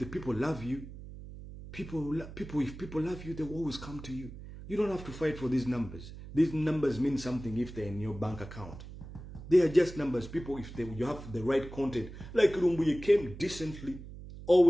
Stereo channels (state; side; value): noise; right; hum, 13 dB below the sound